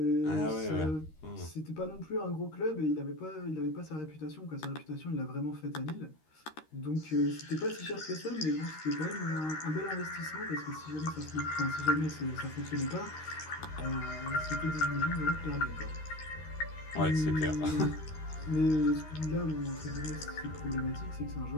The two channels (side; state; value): right; late; 13 ms